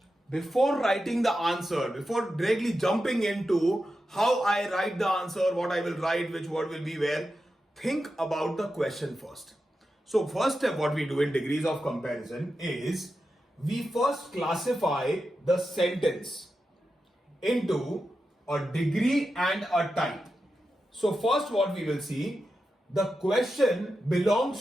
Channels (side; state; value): both; normal; correlation 0.90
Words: Before writing the answer, before directly jumping into how I write the answer, what I will write, which word will be where, think about the question first. So first step what we do in degrees of comparison is we first classify the sentence into a degree and a type. So first what we will see, the question